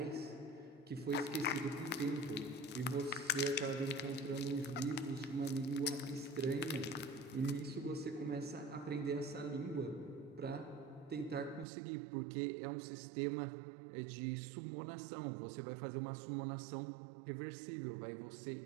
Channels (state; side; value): drops out; left; at 11.7 s